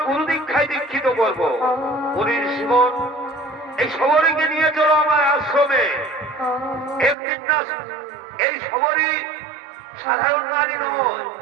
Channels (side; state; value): left; drops out; at 7.2 s